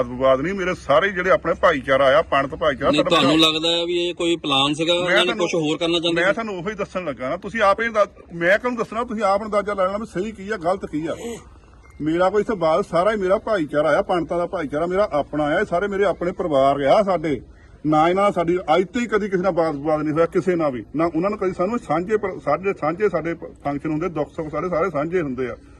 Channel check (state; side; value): identical; both; correlation 1.00